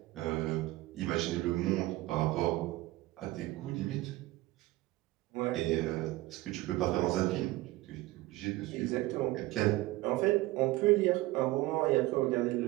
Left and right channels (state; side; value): quieter; left; 18.7 dB